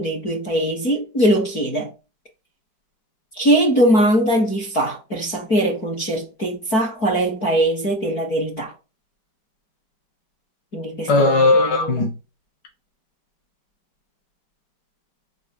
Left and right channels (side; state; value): right; late; 4.6 ms